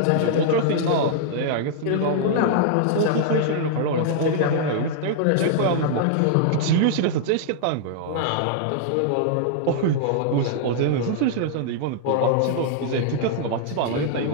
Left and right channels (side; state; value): both; different; correlation -0.01